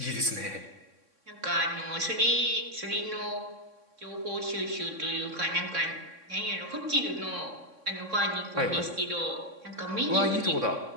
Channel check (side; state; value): left; late; 3.6 ms